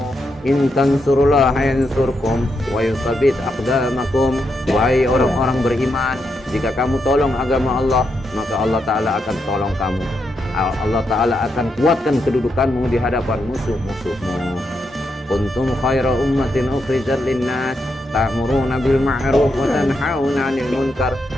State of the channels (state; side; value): normal; both; correlation 0.82